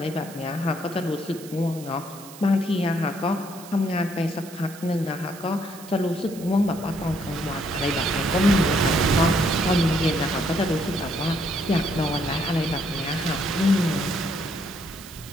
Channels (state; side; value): noise; right; hiss, 18 dB below the sound